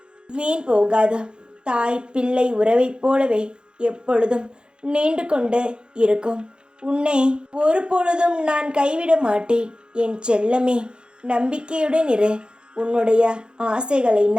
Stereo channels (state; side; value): late; left; 0.050 ms